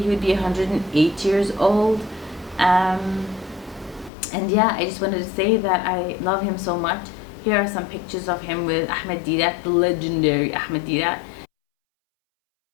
would be 108 years old. And yeah, I just wanted to say that I love him so much. Here are some pictures of him with Ahmed Didat, the legendary Ahmed Didat.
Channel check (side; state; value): right; drops out; at 4.1 s